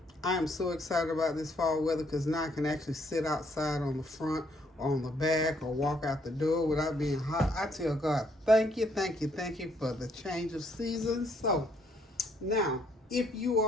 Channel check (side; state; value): both; normal; correlation 0.69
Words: I am so excited about this fall weather because now I can actually sit outside on the front or on the back or walk out the door without being hot. I tell God, thank you for the change of seasons. So now, if you